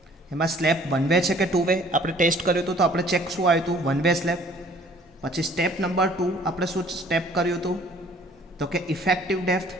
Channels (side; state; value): both; normal; correlation 0.55